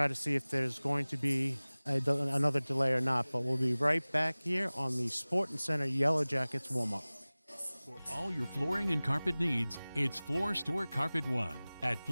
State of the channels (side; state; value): both; inverted; correlation -0.99